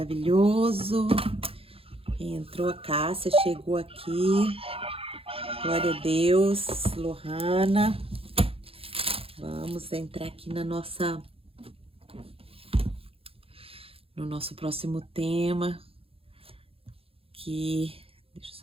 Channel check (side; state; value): left; late; 0.27 ms